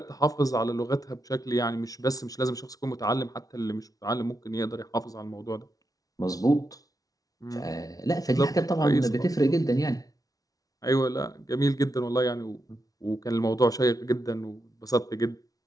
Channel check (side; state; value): right; late; 0.18 ms